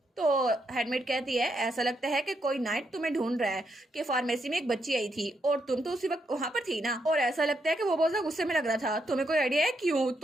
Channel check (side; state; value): both; normal; correlation 0.79